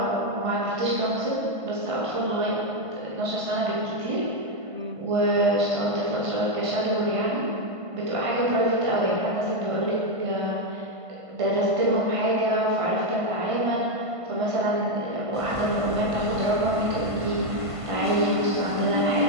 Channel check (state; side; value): late; left; 1.5 ms